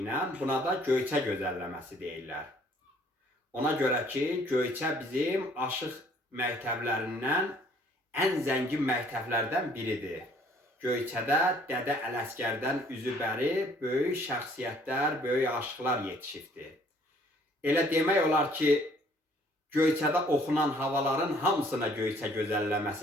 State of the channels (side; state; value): both; normal; correlation 0.60